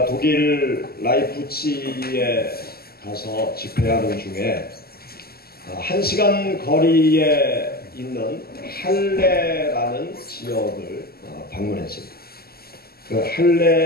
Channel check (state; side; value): late; right; 0.45 ms